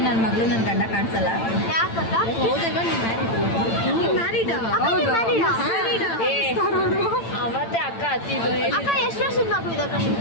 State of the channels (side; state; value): right; late; 8.9 ms